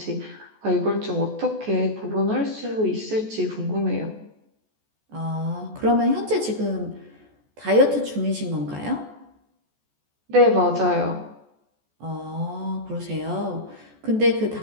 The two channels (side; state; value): left; late; 14 ms